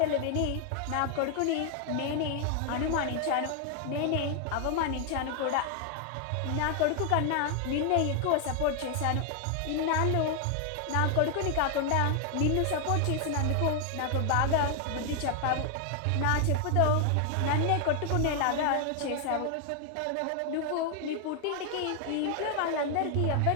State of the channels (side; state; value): both; different; correlation 0.00